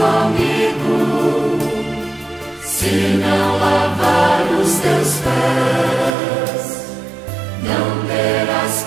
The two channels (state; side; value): drops out; left; at 6.2 s